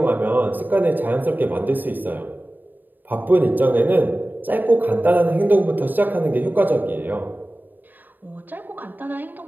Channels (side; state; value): left; late; 0.090 ms